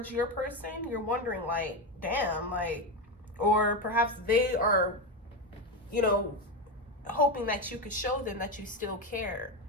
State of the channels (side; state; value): both; normal; correlation 0.13